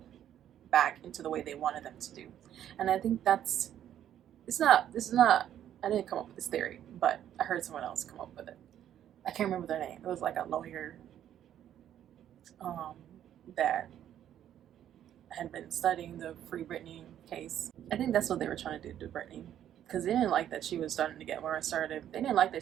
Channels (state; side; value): quieter; left; 10.7 dB